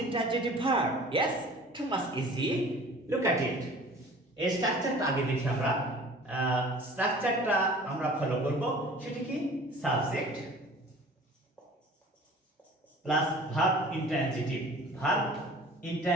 intransitive verb? Yes, too much easy. Look at it. এই স্ট্রাকচারটা আগে দেখি আমরা। স্ট্রাকচারটা আমরা ফলো করব। সেটা কি? Subject plus verb intransitive, verb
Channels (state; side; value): normal; both; correlation 0.46